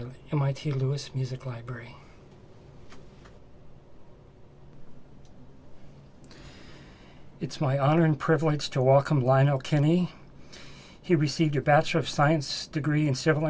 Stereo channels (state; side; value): identical; both; correlation 1.00